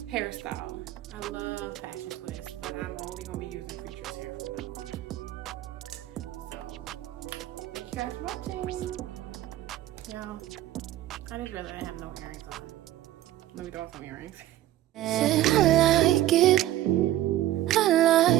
hairstyle. I love fashion twists, but I'm only gonna be using Creatures hair from now on. So, thank you guys for watching. Yeah, I just realized I have no earrings on. Let me throw off some earrings. I like it. I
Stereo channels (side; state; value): left; quieter; 14.1 dB